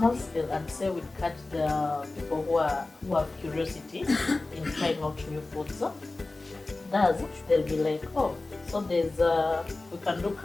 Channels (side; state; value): right; quieter; 3.2 dB